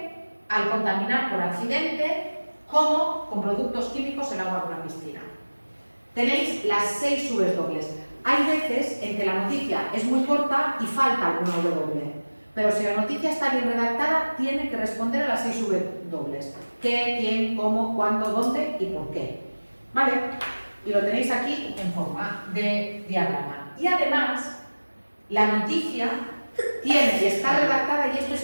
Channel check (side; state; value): both; inverted; correlation -1.00